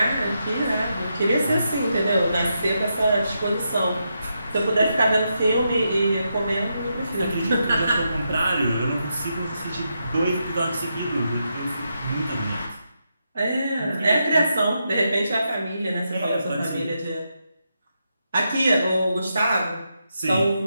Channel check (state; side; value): inverted; both; correlation -0.84